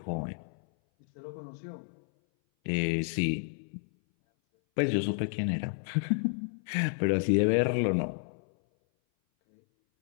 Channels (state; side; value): silent; right; 57 dB below the other